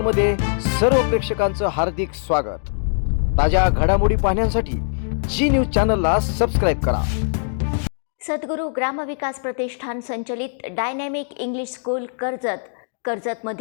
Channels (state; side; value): silent; right; digital silence